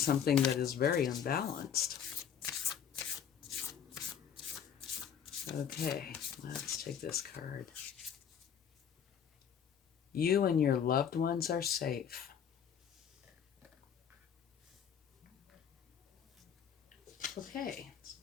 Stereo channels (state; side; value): quieter; right; 8.2 dB